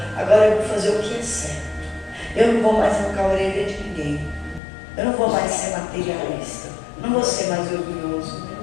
Agora eu vou fazer o que é certo. Eu não vou mais arrancar a orelha de ninguém. Eu não vou mais ser materialista. Não vou ser mais orgulhoso.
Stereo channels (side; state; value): right; drops out; at 4.6 s